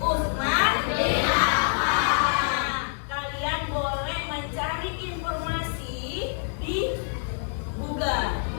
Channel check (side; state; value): right; silent; 61 dB below the other